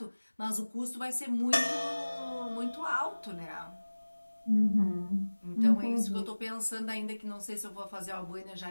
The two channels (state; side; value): inverted; both; correlation -1.00